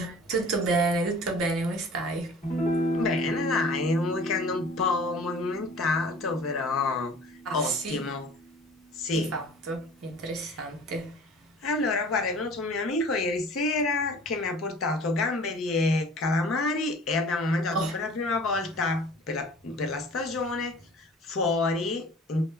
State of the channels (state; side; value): normal; both; correlation 0.46